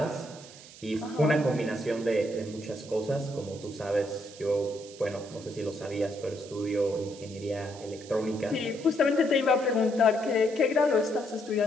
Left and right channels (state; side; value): noise; right; hiss, 18 dB below the sound